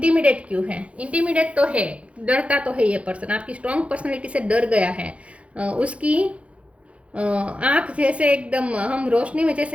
क्यों है? इंटिमिडेट तो है, डरता तो है ये पर्सन, आपकी स्ट्रॉन्ग पर्सनैलिटी से डर गया है। उसकी आँख जैसे एकदम, हम रोशनी में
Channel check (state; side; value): late; left; 0.062 ms